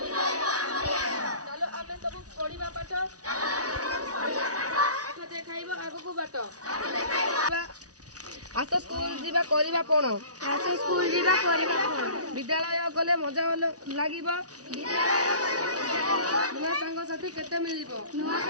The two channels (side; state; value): left; late; 0.68 ms